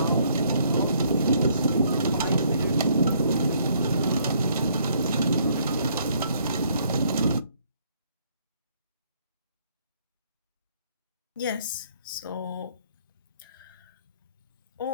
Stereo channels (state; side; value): inverted; both; correlation -0.66